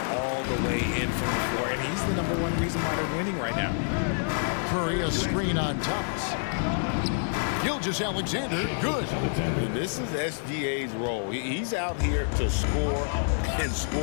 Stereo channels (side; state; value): right; silent; digital silence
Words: all the way in from the floor, and he's the #1 reason why they're winning right now. Curry, a screen on Thomas. Gilgeous-Alexander, good. And this is SGA's role. He's out here to score and